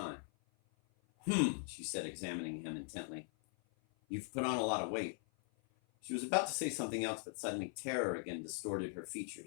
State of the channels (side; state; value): right; silent; 51 dB below the other